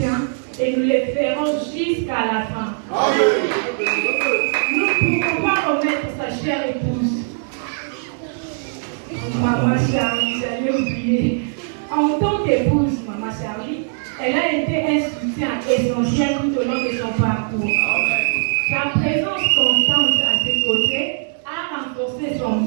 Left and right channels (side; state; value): left; silent; digital silence